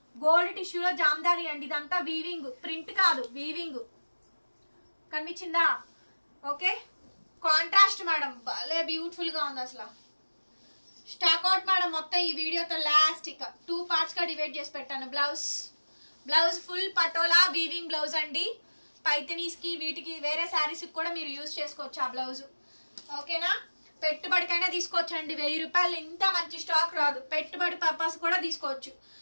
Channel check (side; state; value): both; inverted; correlation -1.00